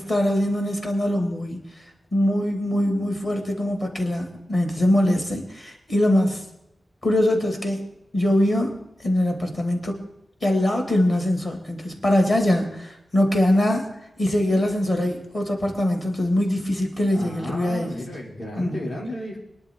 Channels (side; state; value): both; normal; correlation 0.92